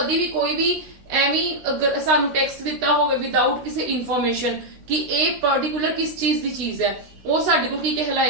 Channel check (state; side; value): late; left; 16 ms